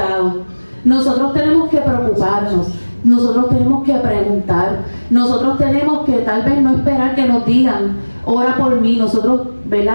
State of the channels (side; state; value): both; inverted; correlation -1.00